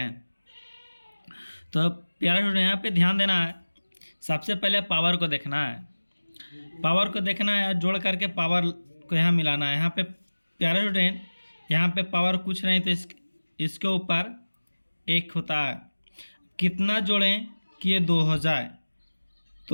तो प्यारे स्टूडेंट, यहाँ पे ध्यान देना है। सबसे पहले पावर को देखना है। पावर को देखना है, जोड़ करके पावर को यहाँ मिलाना है। यहाँ पे प्यारे स्टूडेंट, यहाँ पे पावर कुछ नहीं तो इसके ऊपर 1 होता है। कितना जोड़ें कि ये 2 हो जाए?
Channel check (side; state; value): both; inverted; correlation -1.00